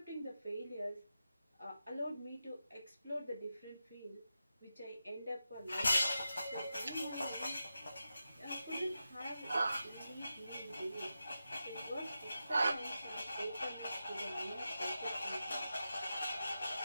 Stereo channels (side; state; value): both; inverted; correlation -0.90